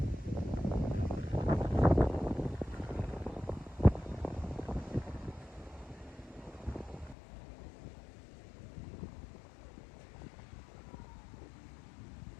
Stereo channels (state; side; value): drops out; right; at 7.2 s